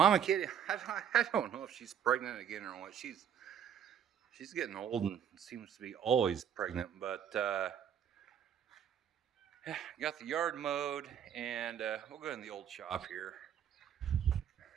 kitty, I don't know if she's pregnant again or what. She's getting old and seems to be always pregnant. But got the yard mowed, and we'll go in the old shop here.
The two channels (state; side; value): quieter; left; 8.8 dB